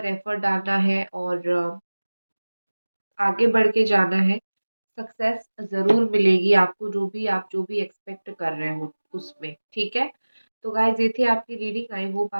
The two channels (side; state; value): both; inverted; correlation -1.00